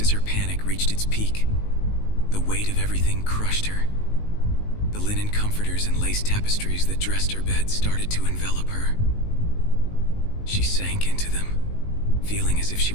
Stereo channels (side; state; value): right; late; 19 ms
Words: as her panic reached its peak, the weight of everything crushed her. The linen comforters and lace tapestries that dressed her bed started to envelop her. She sank into them, feeling as if she